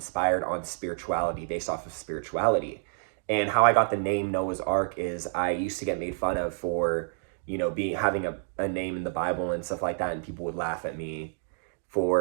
on spirituality, based off of spirituality. And how I got the name Noah's Ark is I used to get made fun of for, you know, having a name in the Bible and stuff like that, and people would laugh at me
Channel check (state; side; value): silent; left; digital silence